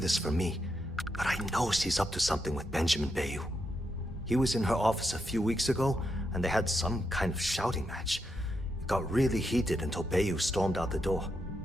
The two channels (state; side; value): normal; both; correlation 0.82